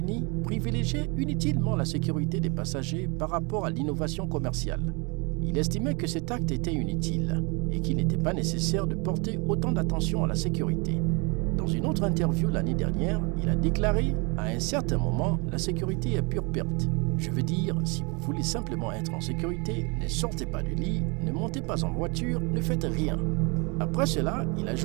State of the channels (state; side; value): quieter; left; 30.6 dB